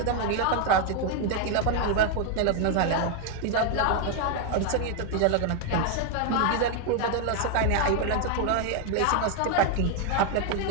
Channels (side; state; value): both; different; correlation 0.01